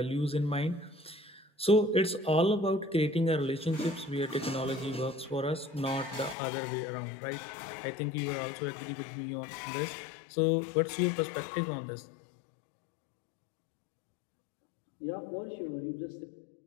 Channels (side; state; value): right; drops out; at 6.4 s